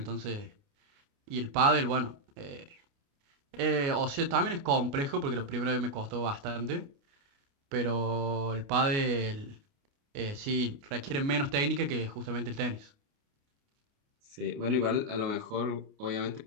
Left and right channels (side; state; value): left; late; 29 ms